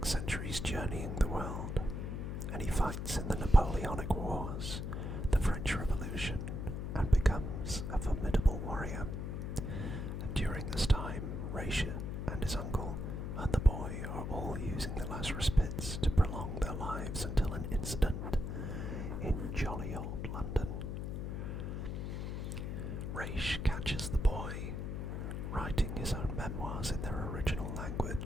centuries journeying the world, and he fights in the Napoleonic Wars, the French Revolution, and becomes a formidable warrior. And during this time, Raish and his uncle and the boy are all using the Lazarus pits to prolong their lives until an incident in jolly old London. Raish catches the boy writing his own memoirs in their original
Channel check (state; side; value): noise; left; hum, 3 dB below the sound